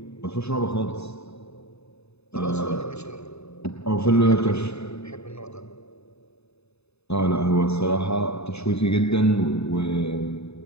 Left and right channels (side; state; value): right; late; 0.79 ms